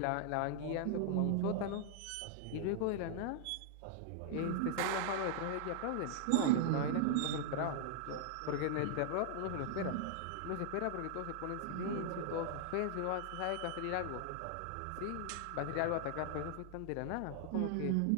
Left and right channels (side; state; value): both; different; correlation -0.01